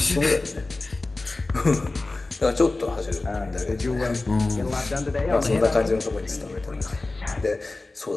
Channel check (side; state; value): right; quieter; 3.2 dB